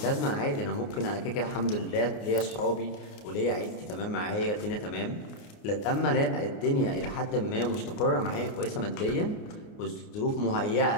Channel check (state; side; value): late; right; 29 ms